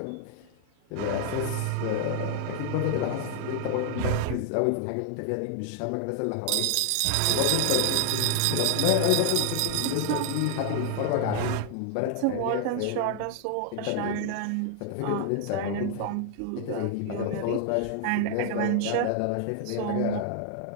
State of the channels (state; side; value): different; both; correlation 0.00